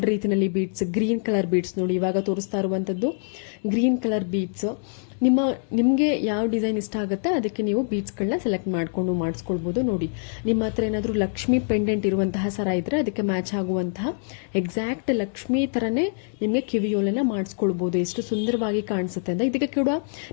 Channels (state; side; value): silent; right; digital silence